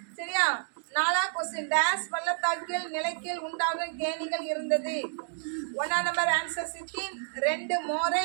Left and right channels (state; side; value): silent; left; digital silence